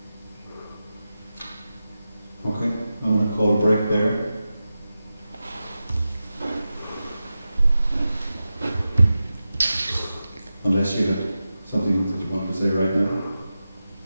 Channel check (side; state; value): both; inverted; correlation -0.93